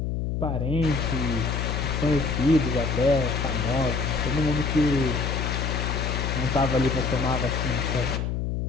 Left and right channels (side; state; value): left; noise; hum, 1 dB below the sound